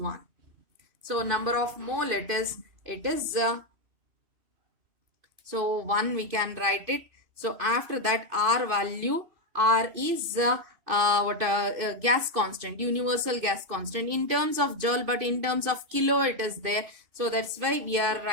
So number of mole it is so 1 we can write it. So after that, R value, R is gas constant, universal gas constant in terms of joule, but in terms of kilo it is there. So that's why we are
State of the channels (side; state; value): left; late; 2.5 ms